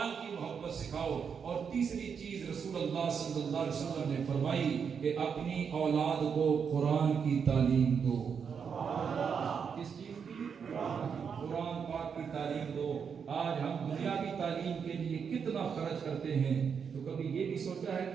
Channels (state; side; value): quieter; left; 6.6 dB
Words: کی محبت سکھاؤ۔ اور تیسری چیز رسول اللہ صلی اللہ علیہ وسلم نے فرمائی کہ اپنی اولاد کو قرآن کی تعلیم دو۔ کس چیز کی؟ قرآن پاک کی تعلیم دو۔ آج ہم دنیا کی تعلیم کے لیے کتنا خرچ کرتے ہیں، تو کبھی یہ بھی سوچا ہے